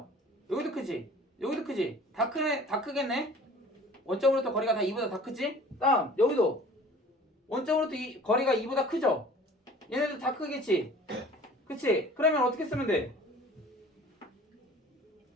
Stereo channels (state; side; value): normal; both; correlation 0.47